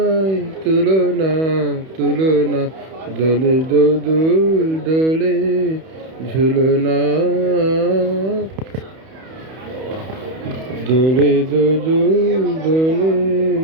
তুলনা তুলনা, দোলে দোদুল দোলে ঝুলনা, দোলে দোদুল দোলে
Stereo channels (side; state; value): left; late; 31 ms